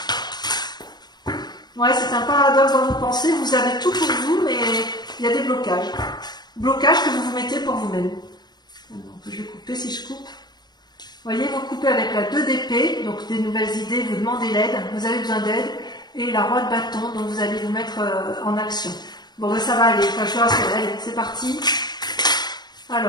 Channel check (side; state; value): right; late; 0.20 ms